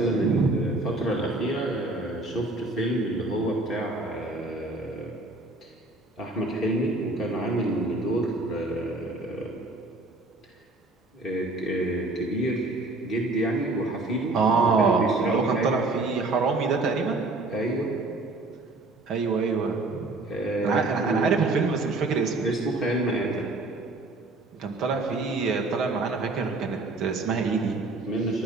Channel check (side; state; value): left; quieter; 3.0 dB